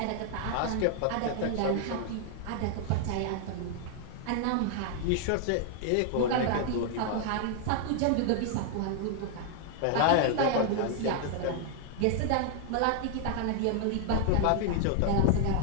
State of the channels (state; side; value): different; both; correlation 0.00